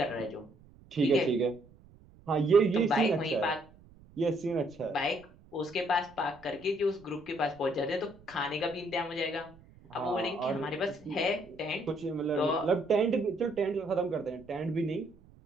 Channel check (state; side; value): noise; right; rumble, 25 dB below the sound